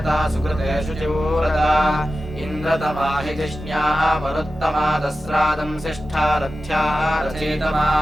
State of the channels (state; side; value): normal; both; correlation 0.94